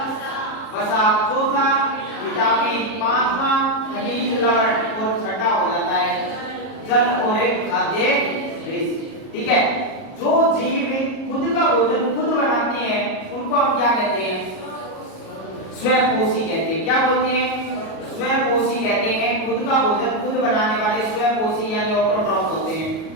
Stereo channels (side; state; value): right; late; 37 ms